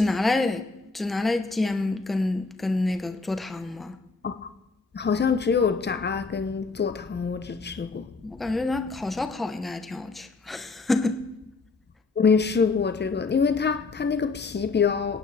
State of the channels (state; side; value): quieter; right; 4.1 dB